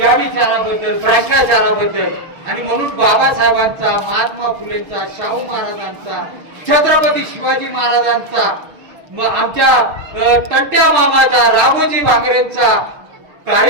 विचाराबद्दल, भ्रष्टाचाराबद्दल. आणि म्हणून बाबासाहेबांचा, महात्मा फुलेंचा, शाहू महाराजांचा, छत्रपती शिवाजी महाराजांचा, आमच्या तंट्या मामाचा, राघोजी भांगरेंचा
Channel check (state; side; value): late; left; 6.4 ms